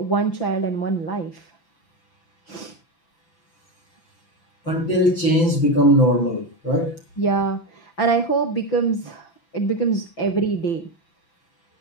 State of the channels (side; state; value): right; late; 6.0 ms